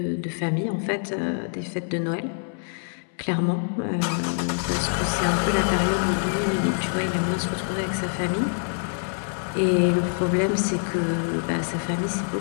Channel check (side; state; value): right; silent; 62 dB below the other